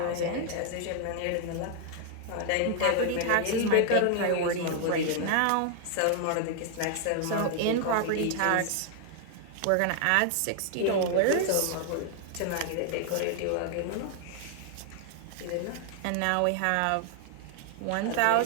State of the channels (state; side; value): different; both; correlation 0.00